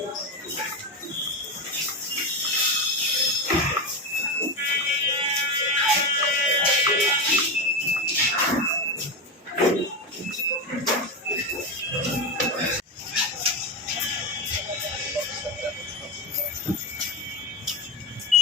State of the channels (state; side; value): normal; both; correlation 0.15